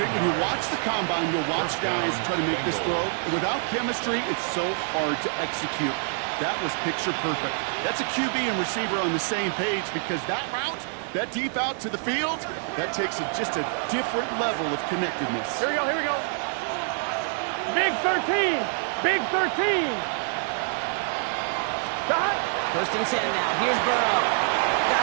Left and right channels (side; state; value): left; silent; 56 dB below the other